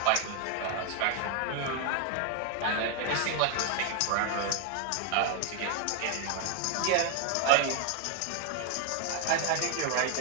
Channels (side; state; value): both; different; correlation 0.00